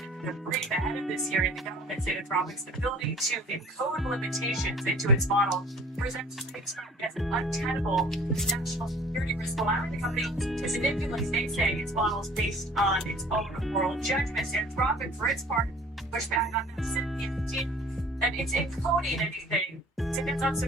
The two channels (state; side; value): normal; both; correlation 0.49